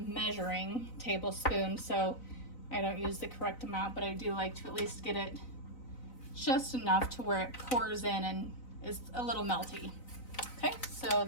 measuring tablespoon, so I don't use the correct amount, but I do like to at least get it just enough to where it pours in and is a little melty. Okay, so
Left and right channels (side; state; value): right; late; 4.0 ms